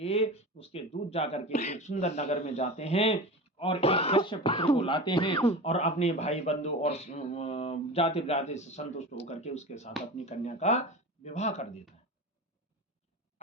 उसके दूत जा करके एक सुंदर नगर में जाते हैं और एक वैश्य पुत्र को लाते हैं और अपने भाई बंधु और जाति ब्राति से संतुष्ट होकर के उसके साथ अपनी कन्या का विवाह कर देता है।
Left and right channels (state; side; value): normal; both; correlation 0.30